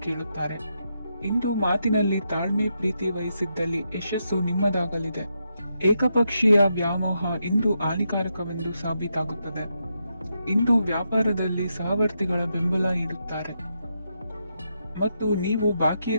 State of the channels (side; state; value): both; inverted; correlation -0.83